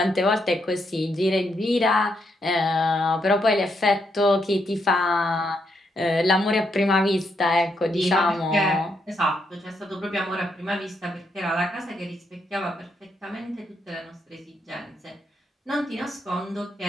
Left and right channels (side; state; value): both; normal; correlation 0.78